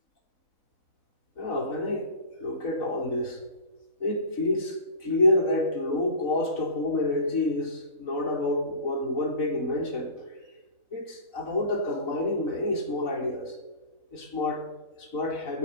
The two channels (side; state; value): right; late; 4.0 ms